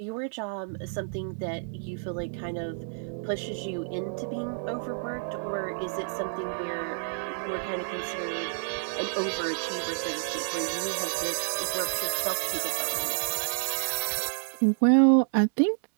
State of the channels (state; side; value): silent; left; digital silence